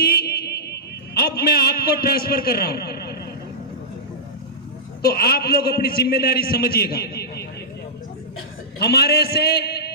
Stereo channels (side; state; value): both; normal; correlation -0.16